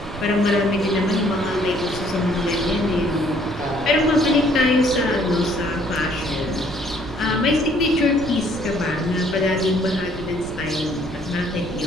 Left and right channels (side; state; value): right; noise; rumble, 12 dB below the sound